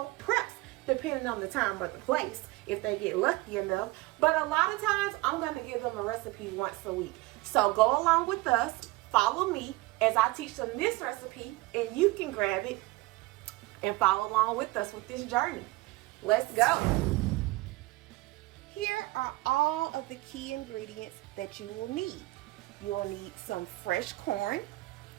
preps, depending on the time or the place, if they get lucky enough. But a lot of times, I'm going to give them a recipe once a week. So go along with us, follow me as I teach them this recipe, and you can grab it and follow along with us with this journey. Let's go. Here are all of the key ingredients that you will need. You'll need some fresh corn,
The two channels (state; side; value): quieter; left; 20.8 dB